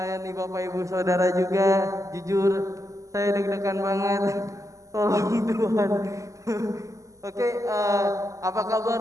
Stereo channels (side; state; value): left; late; 0.16 ms